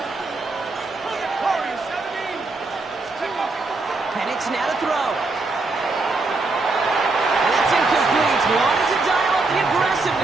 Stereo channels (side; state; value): left; quieter; 3.4 dB